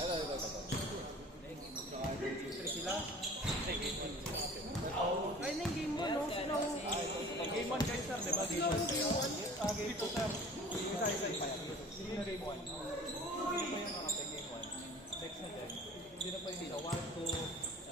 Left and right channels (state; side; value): normal; both; correlation 0.45